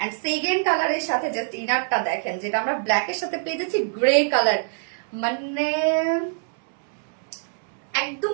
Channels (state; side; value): silent; left; 62 dB below the other